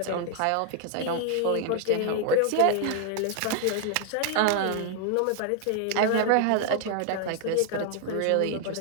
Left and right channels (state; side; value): different; both; correlation 0.00